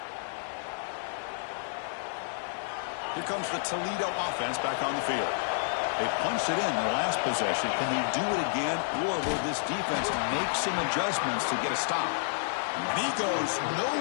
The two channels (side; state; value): right; silent; 58 dB below the other